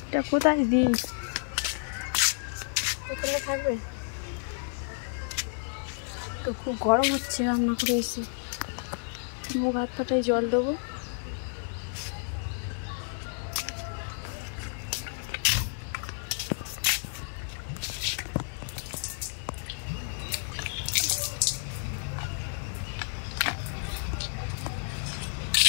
এটা কোথায় দিই, এখানে থাকবে তো। খুব গরম হচ্ছে, রান্না করে এসে মুখ হাত পাটায় জল দেবো।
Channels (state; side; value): silent; right; digital silence